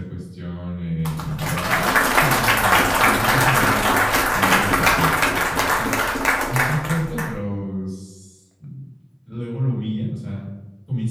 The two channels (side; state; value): both; identical; correlation 1.00